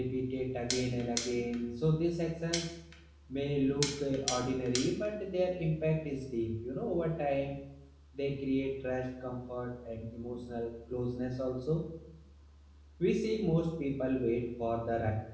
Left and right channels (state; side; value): identical; both; correlation 1.00